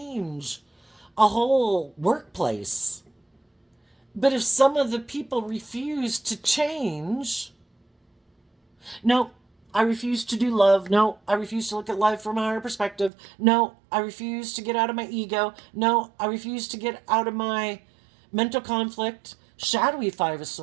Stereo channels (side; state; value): left; drops out; at 13.1 s